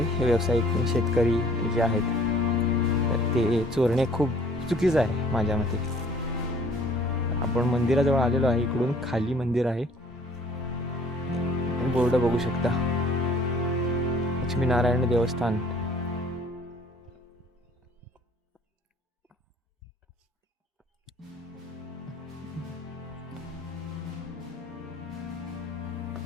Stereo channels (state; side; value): normal; both; correlation 0.56